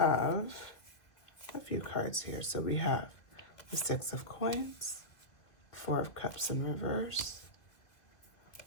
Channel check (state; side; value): late; right; 2.1 ms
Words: a few cards here. So we have the 6 of Coins, 4 of Cups in reverse,